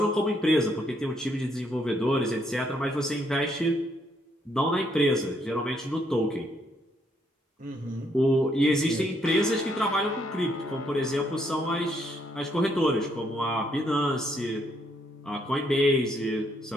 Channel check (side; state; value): both; normal; correlation 0.72